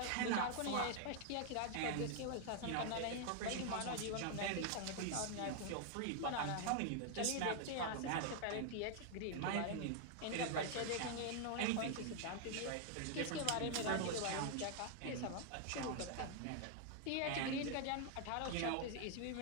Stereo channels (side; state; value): both; different; correlation 0.00